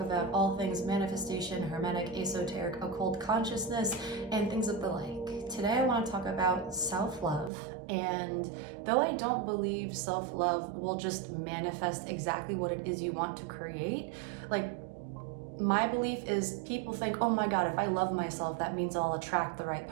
about all things manifestation, hermetic, esoteric, occult consciousness, and things of the like. Today I want to talk about self-love, and though I don't believe self-love will just manifest exactly what it is you want to create, my belief is people think, oh my God, if I love myself, that means I'll attract the right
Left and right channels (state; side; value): drops out; left; at 7.5 s